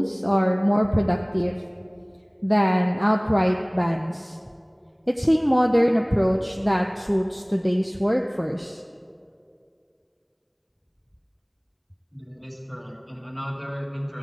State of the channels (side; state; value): both; identical; correlation 1.00